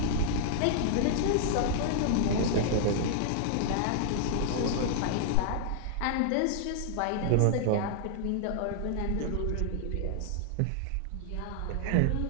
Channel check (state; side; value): different; both; correlation -0.01